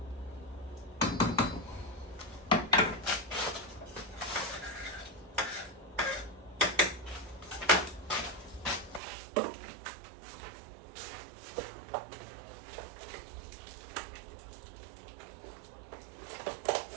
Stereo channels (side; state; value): left; drops out; at 9.0 s